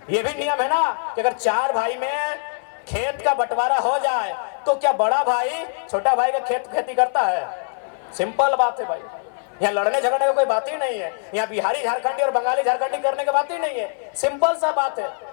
ये भी नियम है ना कि अगर 4 भाई में खेत का बंटवारा हो जाए तो क्या बड़ा भाई छोटा भाई का खेती करता है? सिंपल बात है भाई, यहाँ लड़ने झगड़ने की कोई बात ही नहीं है, यहाँ बिहारी झारखंडी और बंगाली झारखंडी करने की बात ही नहीं है, सिंपल सा बात है।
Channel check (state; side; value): silent; right; 59 dB below the other